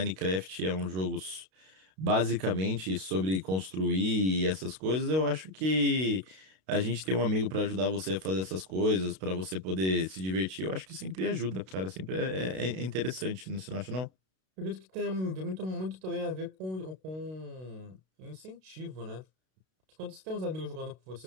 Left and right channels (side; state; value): left; late; 32 ms